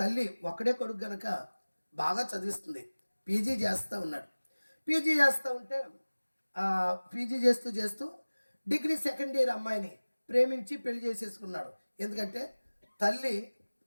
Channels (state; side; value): inverted; both; correlation -1.00